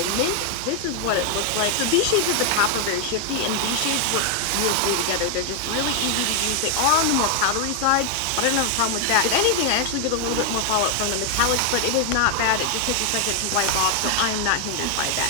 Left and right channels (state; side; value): different; both; correlation 0.00